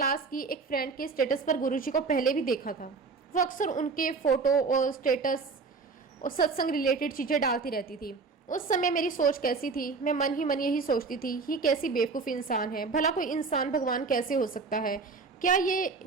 की एक फ्रेंड के स्टेटस पर गुरुजी को पहले भी देखा था। वो अक्सर उनके फोटो और स्टेटस और सत्संग रिलेटेड चीजें डालती रहती थी। उस समय मेरी सोच कैसी थी, मैं मन ही मन यही सोचती थी, ये कैसी बेवकूफ़ इंसान है, भला कोई इंसान भगवान कैसे हो सकता है। क्या ये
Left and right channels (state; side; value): quieter; left; 4.5 dB